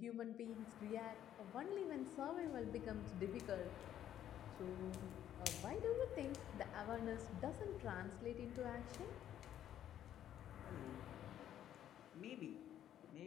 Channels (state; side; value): quieter; right; 11.0 dB